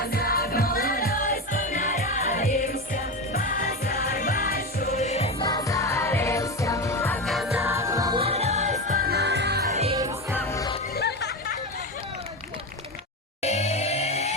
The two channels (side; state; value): both; normal; correlation 0.19